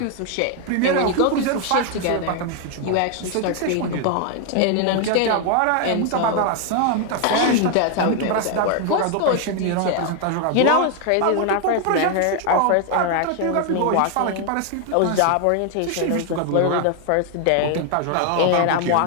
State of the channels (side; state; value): both; different; correlation 0.00